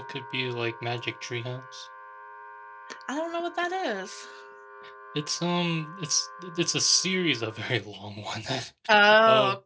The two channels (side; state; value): both; identical; correlation 1.00